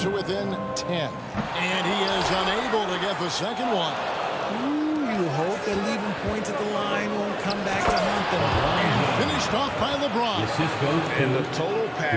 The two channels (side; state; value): both; identical; correlation 1.00